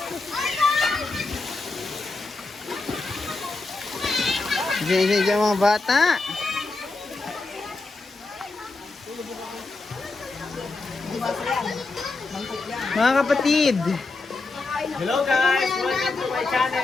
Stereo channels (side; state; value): right; quieter; 3.6 dB